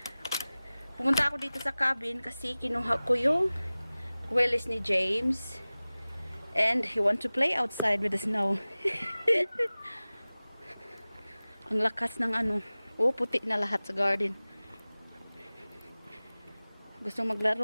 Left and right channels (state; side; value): inverted; both; correlation -0.98